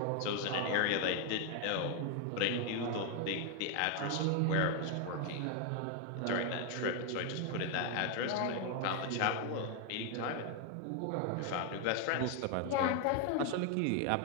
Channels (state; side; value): different; both; correlation 0.01